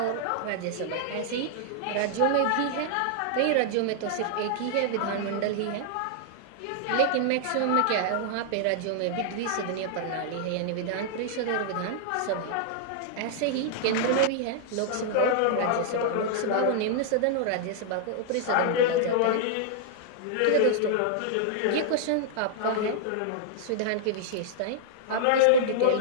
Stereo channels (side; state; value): both; different; correlation -0.01